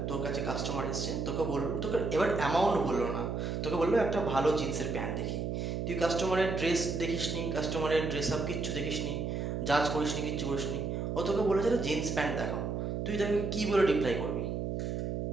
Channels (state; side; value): noise; right; hum, 2 dB below the sound